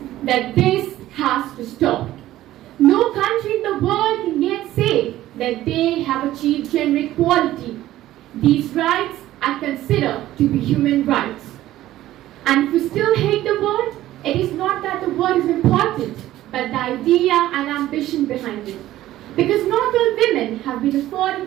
that this has to stop. No country in the world can yet say that they have achieved gender equality. These rights are considered to be human rights. And if we still hate the word, it is not that the word is important, but the idea and ambition behind it. Because not all women have been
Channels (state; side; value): quieter; left; 14.5 dB